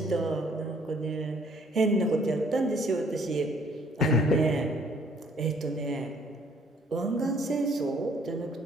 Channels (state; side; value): normal; both; correlation 0.61